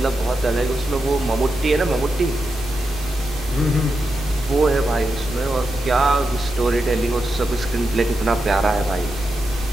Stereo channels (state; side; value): normal; both; correlation 0.87